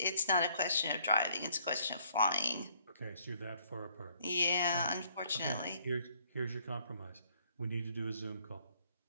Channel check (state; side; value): inverted; both; correlation -0.65